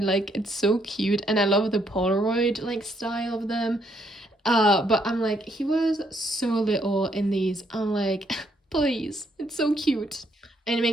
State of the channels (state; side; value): normal; both; correlation 0.72